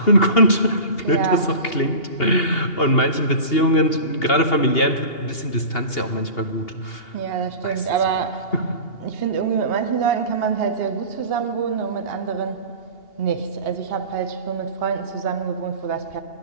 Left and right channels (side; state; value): right; late; 2.8 ms